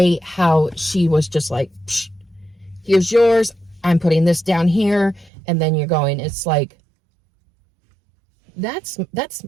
how she was just like, psh, here's yours, I'm putting this down here, and then you're going, it's like, that's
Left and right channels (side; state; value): left; drops out; at 5.3 s